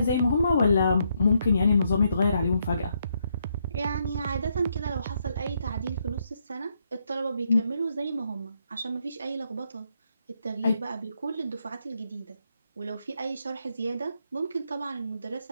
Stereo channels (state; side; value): inverted; both; correlation -0.77